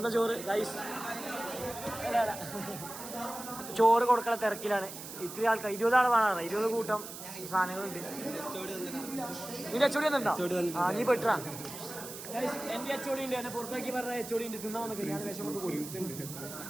ചോറ് ഗൈസ്. ചോറ് കൊടുക്കണ തിരക്കിലാണ്. ഇത്തിരി ആൾക്കാർ 20 ആൾ വേണം. 20 കൂട്ടം സാധനങ്ങളുണ്ട്. നിന്റെ അച്ചോടി വന്നിട്ടുണ്ടോ? നീ പെട്ടാ. എന്റെ അച്ചോടി ഉണ്ട്. എന്നെ പുറത്താക്കി പറഞ്ഞ അച്ചോടി ഉണ്ട്. തിന്നാ വന്നൊക്കെ ഞാൻ വേഷം കൊണ്ട് പോയി.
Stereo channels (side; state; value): right; noise; hiss, 11 dB below the sound